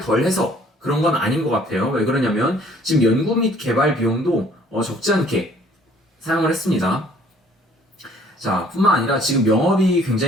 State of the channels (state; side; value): normal; both; correlation 0.57